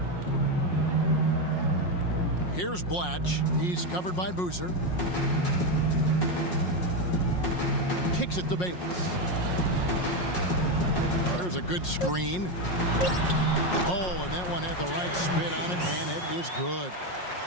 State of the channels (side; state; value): right; late; 5.5 ms